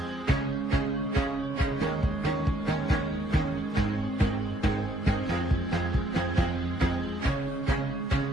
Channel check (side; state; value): both; normal; correlation 0.66